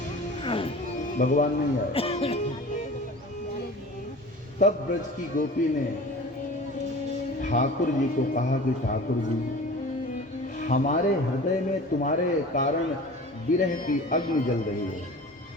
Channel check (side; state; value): both; normal; correlation 0.39